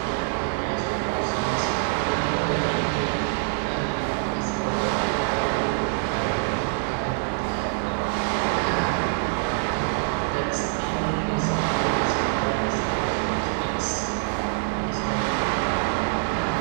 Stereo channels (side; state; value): left; silent; 62 dB below the other